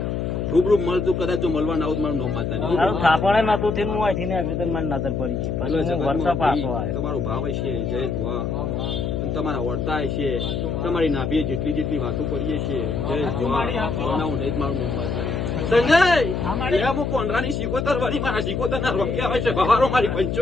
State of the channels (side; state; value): left; noise; hum, 1 dB below the sound